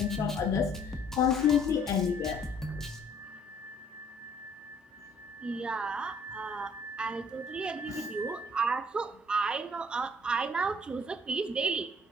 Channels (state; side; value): normal; both; correlation 0.58